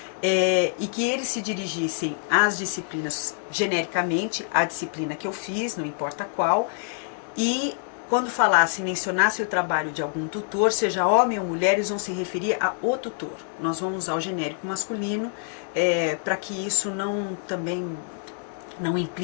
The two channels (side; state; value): right; silent; 61 dB below the other